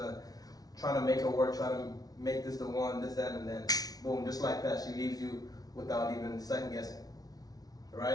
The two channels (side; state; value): right; late; 0.18 ms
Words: trying to make her work, trying to make this the one, this, that, and then boom, just like that, she leaves you without even second guessing,